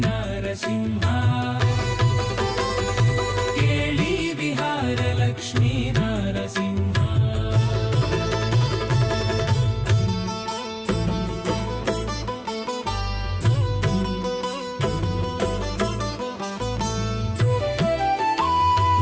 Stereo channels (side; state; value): both; identical; correlation 1.00